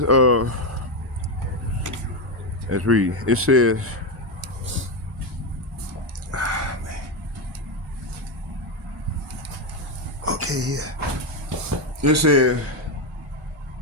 let's read. It says okay, yeah. It says,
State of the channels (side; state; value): both; normal; correlation 0.09